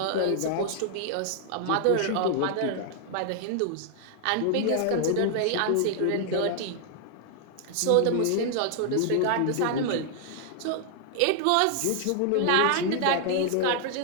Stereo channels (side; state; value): both; different; correlation 0.00